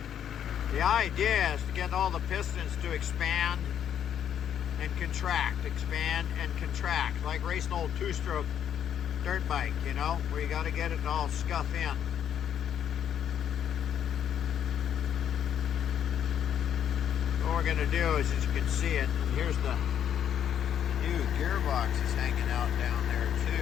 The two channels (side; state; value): right; quieter; 9.4 dB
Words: The idea is to get all the pistons to expand and contract, like racing an old 2-stroke dirt bike, you know, where you got to get it all scuff in. What we're going to do is, as you can see it, here's the new gearbox is hanging out down there